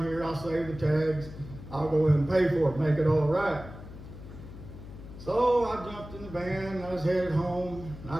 here, I'll save the tags. I'll go in and pay for it, make it all right. So I jumped in the van, and I was headed home.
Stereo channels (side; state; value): left; noise; hum, 14 dB below the sound